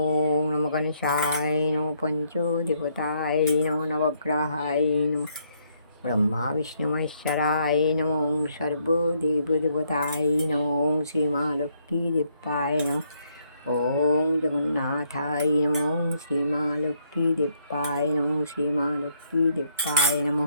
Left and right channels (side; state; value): both; inverted; correlation -0.72